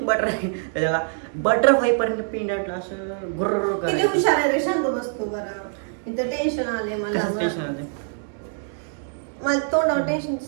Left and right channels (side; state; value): left; silent; digital silence